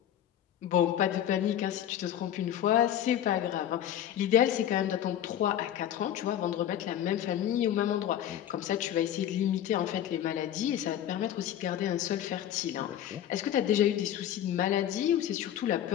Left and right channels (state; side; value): quieter; right; 11.0 dB